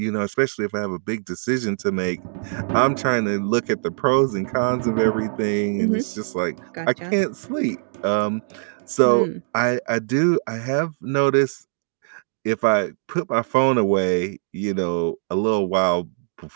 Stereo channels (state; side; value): silent; left; digital silence